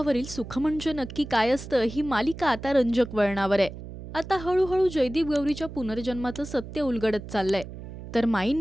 सुख म्हणजे नक्की काय असतं ही मालिका आता रंजक वळणावर आहे। आता हळूहळू जयदीप गौरीच्या पुनर्जन्माचं सत्य उलगडत चाललंय। तर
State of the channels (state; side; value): noise; right; hum, 12 dB below the sound